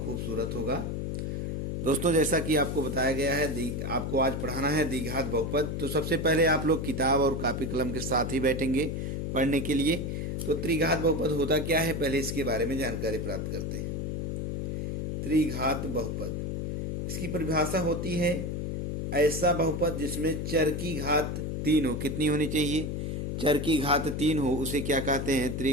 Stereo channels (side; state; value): left; noise; hum, 2 dB below the sound